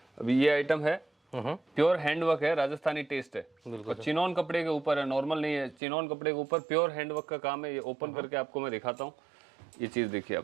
अभी ये आइटम है प्योर हैंडवर्क है, राजस्थानी टेस्ट है और चिनॉन कपड़े के ऊपर है, नॉर्मल नहीं है। चिनॉन कपड़े के ऊपर प्योर हैंडवर्क का काम है। ये ओपन करके आपको मैं दिखाता हूँ। ये चीज देखिए आप,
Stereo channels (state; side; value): drops out; left; at 5.8 s